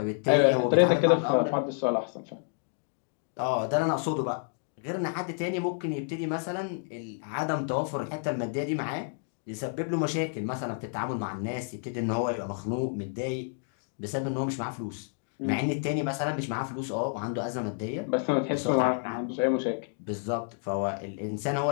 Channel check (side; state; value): right; silent; digital silence